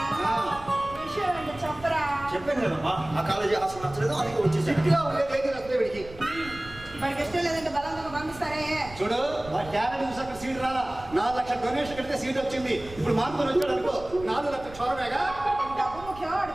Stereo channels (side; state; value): right; noise; rumble, 17 dB below the sound